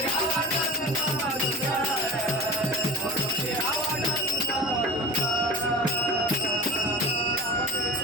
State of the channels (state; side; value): normal; both; correlation 0.36